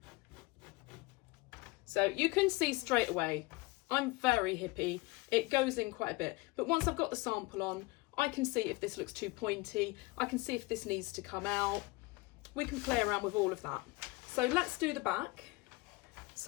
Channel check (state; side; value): quieter; right; 22.9 dB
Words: So you can see straight away, I'm very hippie. It goes in quite a bit. But once I've got the sample on, I can see if this looks too pointy. I can see if this needs to come out. We can play around with all of that. So let's do the back.